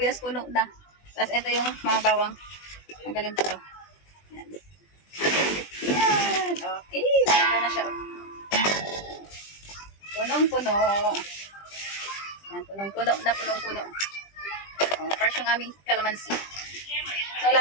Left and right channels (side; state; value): right; late; 20 ms